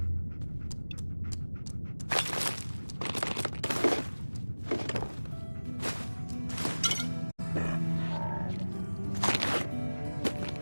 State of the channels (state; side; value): inverted; both; correlation -1.00